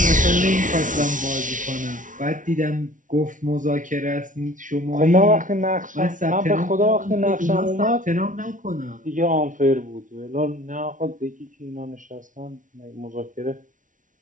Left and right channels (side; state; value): left; late; 0.38 ms